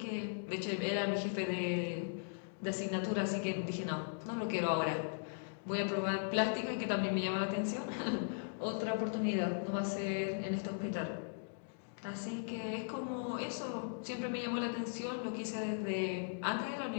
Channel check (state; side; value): silent; right; digital silence